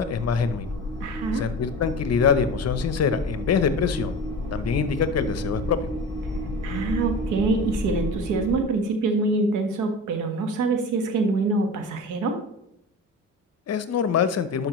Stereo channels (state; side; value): normal; both; correlation 0.32